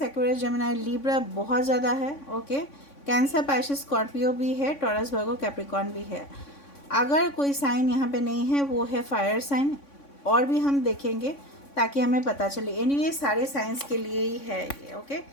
Aquarius, Gemini, Libra बहुत ज़्यादा है, ओके। कैंसर, पाइशिस, स्कॉर्पियो भी है, टॉरस, वर्गो, कैप्रिकॉर्न भी है। अगर कोई साइन यहाँ पे नहीं है वो है फायर साइन, और भी हम देखेंगे ताकि हमें पता चले। एनीवे सारे साइंस के लिए ही है ये, ओके।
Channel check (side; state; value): right; late; 3.5 ms